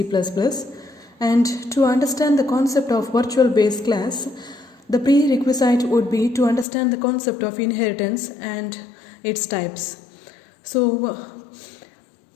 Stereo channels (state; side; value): drops out; right; at 6.7 s